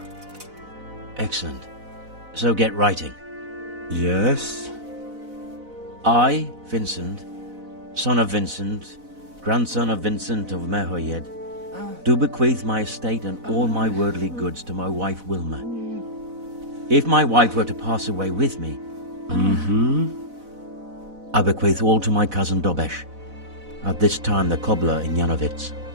Excellent. So get writing. Yes? I, Vincent, son of Vincent, grandson of Vincent of Mehoyed, do bequeath my estate and all my worldly goods to my wife Wilma. If my wife were to pass away with me, I bequeath all to my cousin Dobesh, at this time the cobbler in Yanovitz.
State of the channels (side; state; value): left; late; 4.0 ms